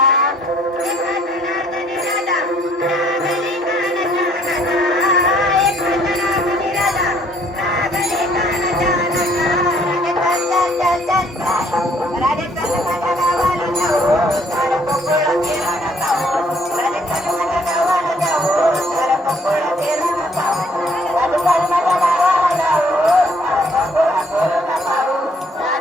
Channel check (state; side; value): normal; both; correlation 0.63